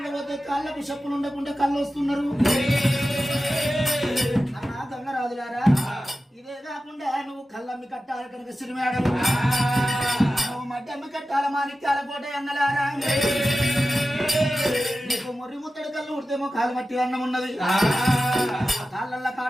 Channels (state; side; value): normal; both; correlation 0.94